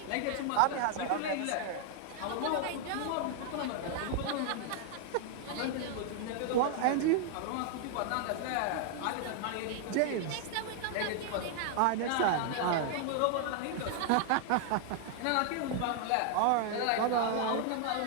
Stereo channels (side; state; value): both; different; correlation 0.00